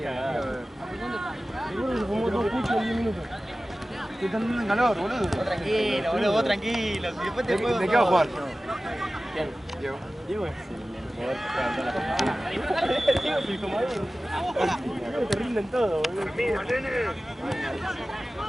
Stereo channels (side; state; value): both; normal; correlation 0.96